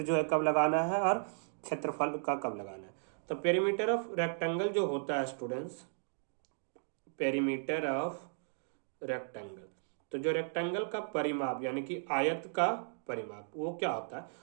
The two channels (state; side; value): silent; left; digital silence